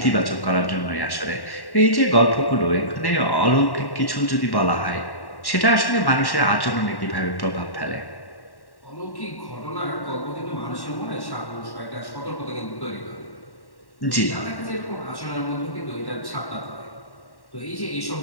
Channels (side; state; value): right; late; 1.1 ms